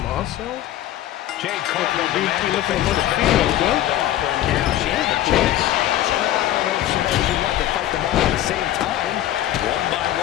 Jade Cargill demanded looking for the female, well. She had the chance. I don't know if she knows she wanted to fight them all at the same time. One by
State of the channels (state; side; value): quieter; right; 13.2 dB